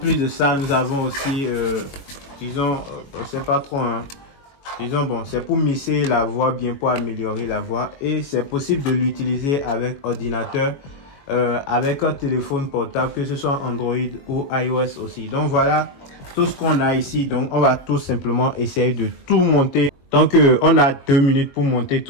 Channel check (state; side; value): late; right; 22 ms